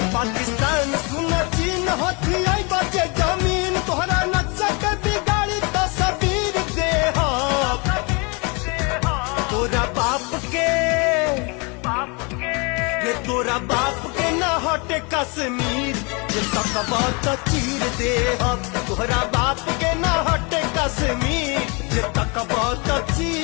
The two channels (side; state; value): right; quieter; 30.9 dB